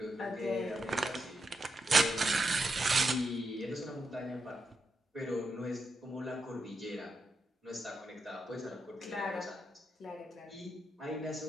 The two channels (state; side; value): normal; both; correlation 0.84